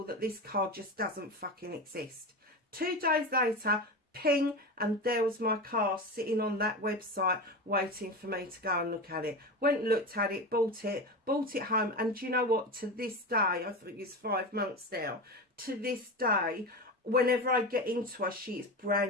that this car just doesn't fucking exist. 2 days later, ping, and there was my car sitting on that website waiting for me to go and look at it. Went and looked at it, bought it home. And do you know what? To this day, I think it's 5 months now, to this day, whenever I get into her, she is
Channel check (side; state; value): both; normal; correlation 0.23